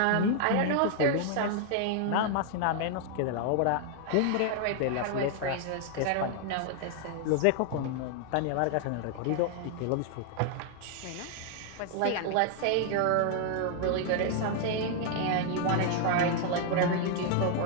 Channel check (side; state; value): both; different; correlation 0.00